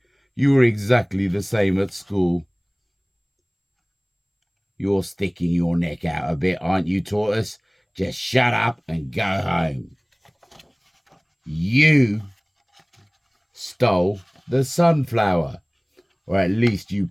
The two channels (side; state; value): both; identical; correlation 1.00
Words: You were exactly the same at school. You're sticking your neck out a bit, aren't you, Tortoise? Just shut up and go home. You stole the sunflower, or at least you